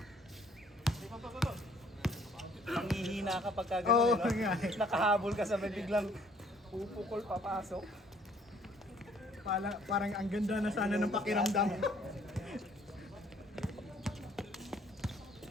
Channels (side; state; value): both; normal; correlation 0.60